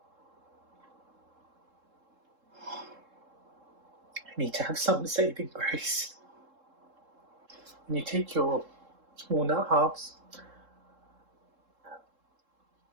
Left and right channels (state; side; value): late; left; 3.7 ms